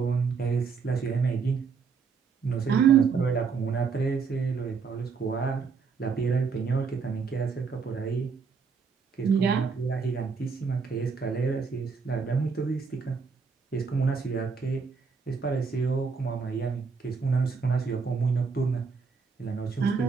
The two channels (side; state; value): left; quieter; 5.4 dB